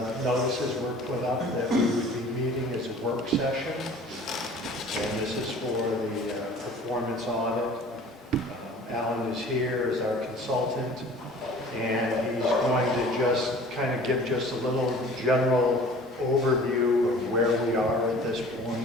notices were put up that we would be meeting as a work session. And this is for the performance audit. Alan is here as our consultant, and he's going to just kind of give just a little general overview of where we are at this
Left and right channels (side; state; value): both; normal; correlation 0.47